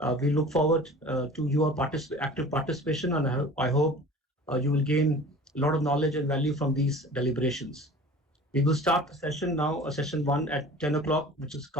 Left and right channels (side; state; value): both; normal; correlation 0.42